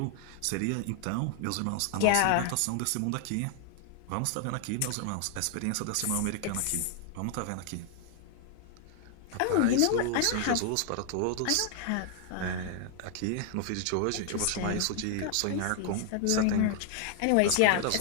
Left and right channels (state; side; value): different; both; correlation 0.00